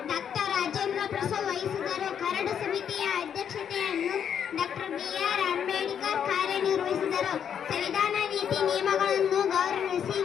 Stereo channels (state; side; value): quieter; right; 8.4 dB